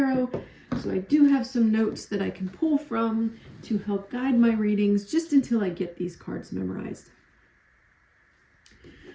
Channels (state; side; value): identical; both; correlation 1.00